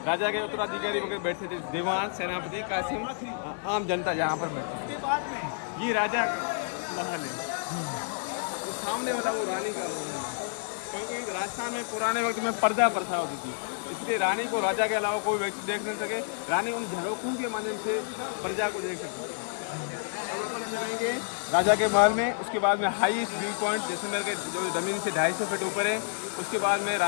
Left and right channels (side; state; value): right; silent; 58 dB below the other